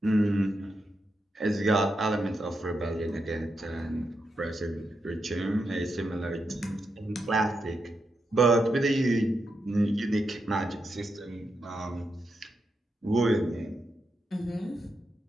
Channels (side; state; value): both; normal; correlation 0.85